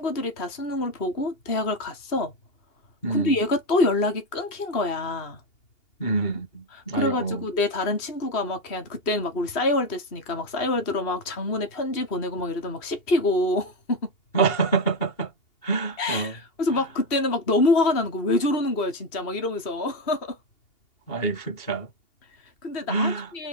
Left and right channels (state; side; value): late; right; 2.8 ms